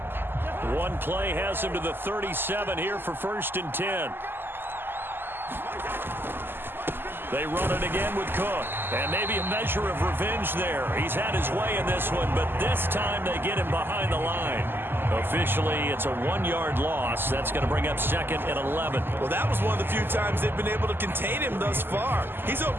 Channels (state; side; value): late; left; 0.10 ms